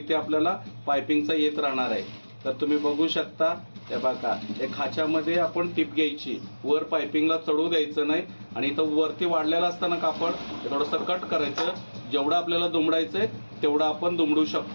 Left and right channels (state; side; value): inverted; both; correlation -1.00